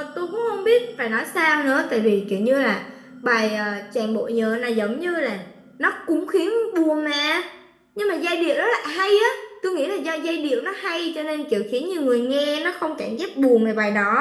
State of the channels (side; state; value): both; identical; correlation 1.00